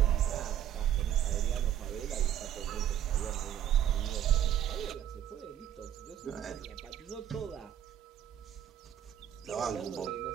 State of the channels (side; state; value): left; quieter; 10.7 dB